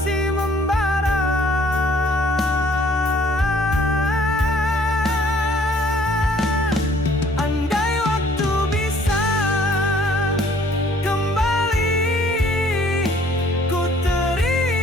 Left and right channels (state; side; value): normal; both; correlation 0.59